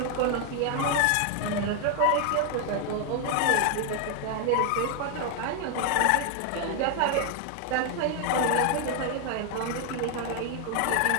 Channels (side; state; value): both; different; correlation 0.00